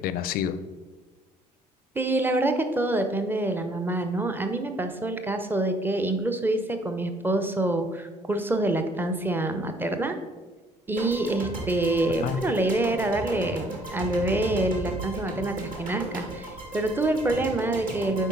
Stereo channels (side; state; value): both; normal; correlation 0.63